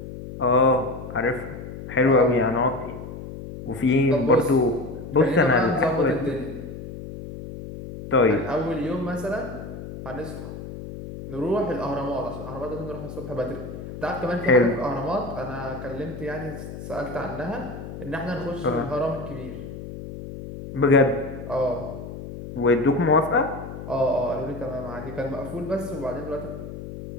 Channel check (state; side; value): noise; left; hum, 10 dB below the sound